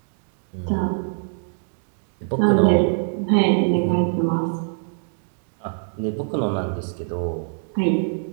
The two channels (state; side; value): silent; left; digital silence